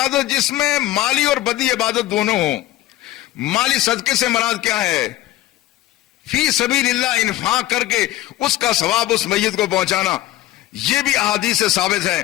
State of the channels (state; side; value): quieter; right; 15.5 dB